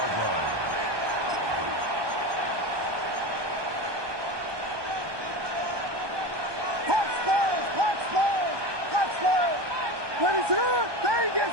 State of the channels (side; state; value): left; late; 1.2 ms